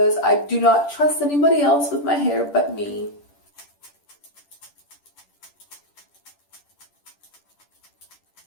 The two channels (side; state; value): right; late; 10 ms